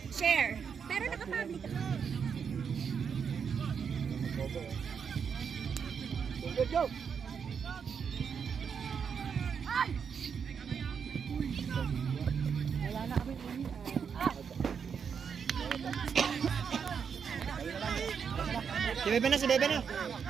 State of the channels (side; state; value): left; quieter; 6.8 dB